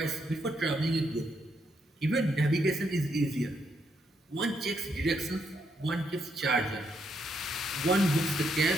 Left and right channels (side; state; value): both; normal; correlation 0.77